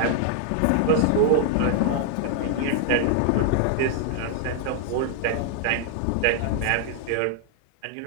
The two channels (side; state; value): both; different; correlation 0.00